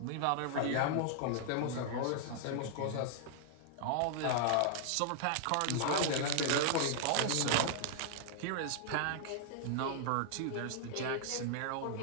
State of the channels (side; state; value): both; different; correlation -0.01